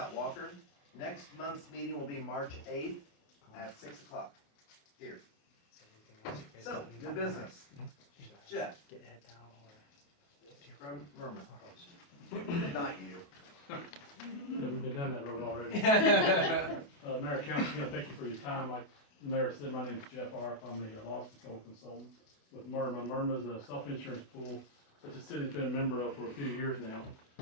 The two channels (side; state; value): right; late; 28 ms